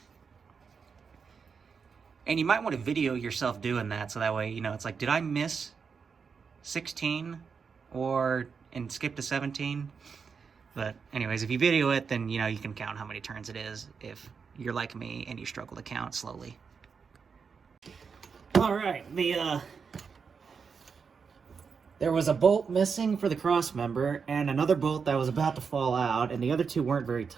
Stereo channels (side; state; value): left; quieter; 5.8 dB